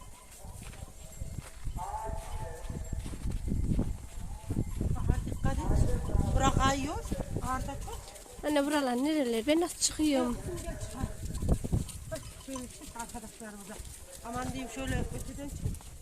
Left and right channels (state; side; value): identical; both; correlation 1.00